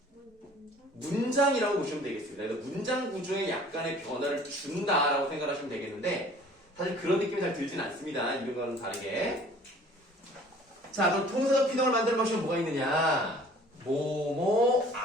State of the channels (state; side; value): normal; both; correlation 0.51